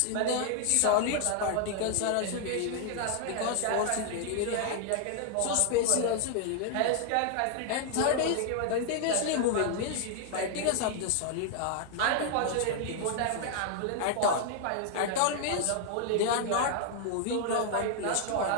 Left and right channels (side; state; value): both; different; correlation 0.00